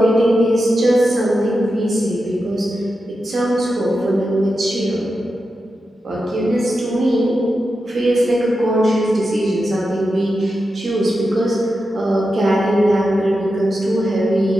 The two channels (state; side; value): normal; both; correlation 0.89